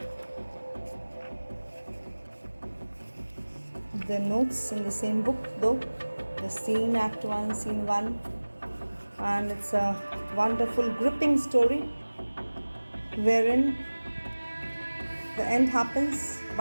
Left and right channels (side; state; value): both; inverted; correlation -1.00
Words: the notes in the same book, though, the scene, Act 1, Scene 1, and it's a wonderful, gripping story wherein the end happens